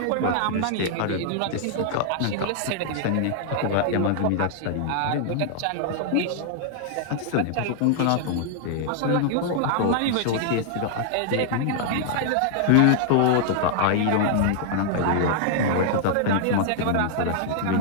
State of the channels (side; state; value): both; different; correlation -0.01